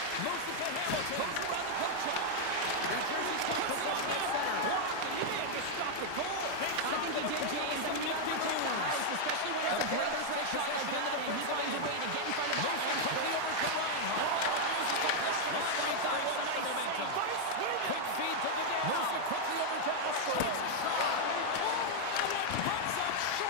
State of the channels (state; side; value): different; both; correlation 0.00